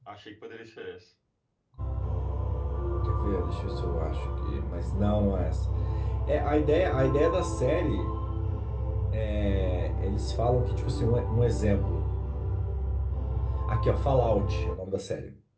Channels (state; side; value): identical; both; correlation 1.00